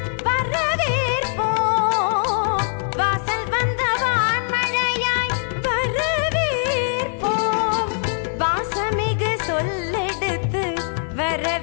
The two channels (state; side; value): silent; right; 64 dB below the other